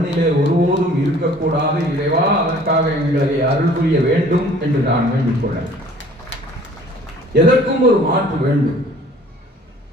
ஒருபோதும் இருக்கக்கூடாது. இறைவா, அதற்காக எங்களை அருள் புரிய வேண்டும் என்று நான் வேண்டிக் கொள்ள. எதற்கும் ஒரு மாற்று வேண்டும்.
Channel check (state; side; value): normal; both; correlation 0.52